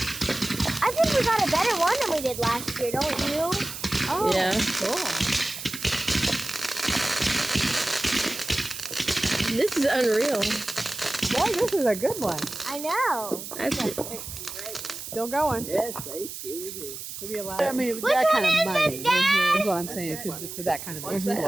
I think we got a better one than we did last year, don't you? Oh, Yeah. cool. This is unreal. Boy, this is a good one. I know. That's Still going. Yes, they sure do. Maybe a lot. I mean, Which that one kind of is money this, Dad? is what I'm saying. For that kind of What's that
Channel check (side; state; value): right; noise; hiss, 9 dB below the sound